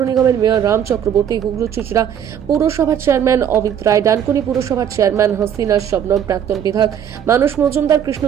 নিগমের মেয়র রাম চক্রবর্তী, হুগলি চুঁচুড়া পুরসভার চেয়ারম্যান অমিত রায়, ডানকুনি পুরসভার চেয়ারম্যান হাসিনা শবনম, প্রাক্তন বিধায়ক মানুষ মজুমদার,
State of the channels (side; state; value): left; quieter; 9.0 dB